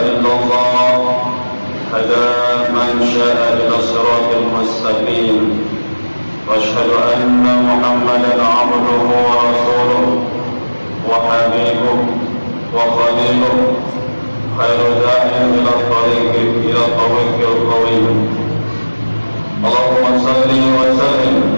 illallah hada man syaa'a ila siratal mustaqim wa asyhadu anna Muhammadan 'abduhu wa rasuluhu wa habibuhu wa khaliluhu khairu da'in ila tariqil qawim. Allahumma salli wa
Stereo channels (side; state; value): both; inverted; correlation -1.00